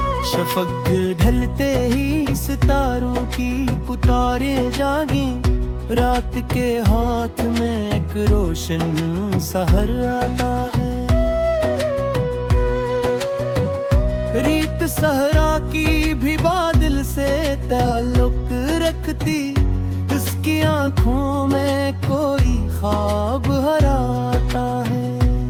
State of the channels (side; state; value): both; identical; correlation 1.00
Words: शफक ढलते ही सितारों की पुकारें जागी, रात के हाथ में एक रोशन सहर आता है। रीत सहरा की भी बादल से ताल्लुक रखती, इसकी आंखों में कोई ख्वाब हराता है।